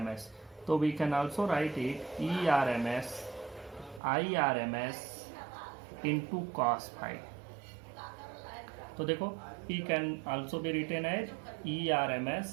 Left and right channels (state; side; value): drops out; left; at 4.0 s